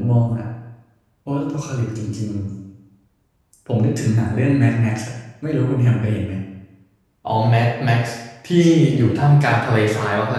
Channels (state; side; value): identical; both; correlation 1.00